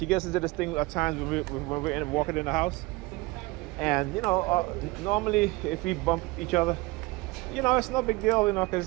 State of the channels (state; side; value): quieter; left; 22.4 dB